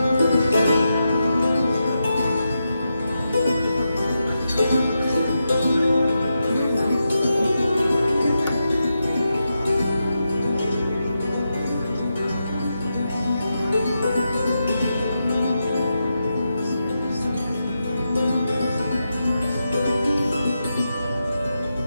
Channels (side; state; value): both; inverted; correlation -0.87